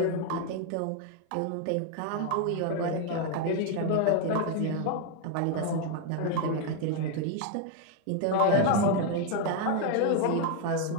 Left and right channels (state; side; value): different; both; correlation 0.01